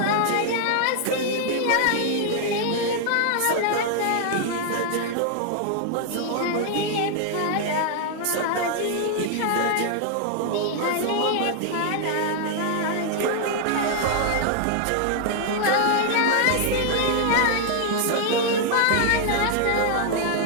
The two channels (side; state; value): both; different; correlation 0.00